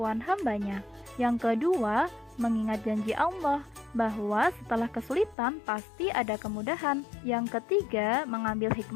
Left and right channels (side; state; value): right; drops out; at 5.4 s